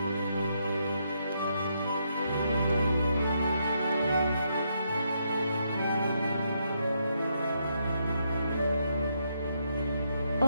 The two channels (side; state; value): both; inverted; correlation -0.78